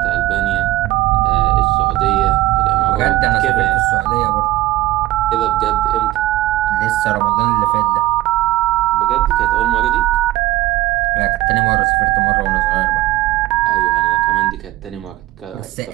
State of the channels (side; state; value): left; quieter; 16.5 dB